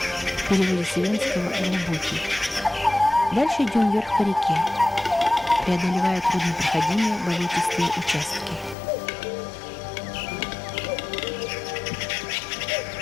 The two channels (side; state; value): right; drops out; at 8.8 s